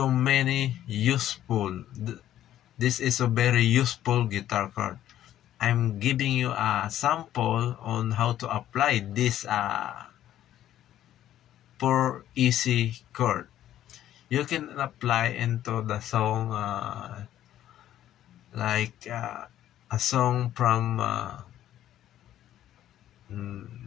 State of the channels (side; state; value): right; quieter; 12.1 dB